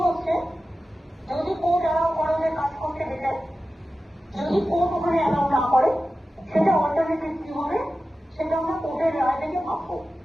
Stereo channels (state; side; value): normal; both; correlation 0.94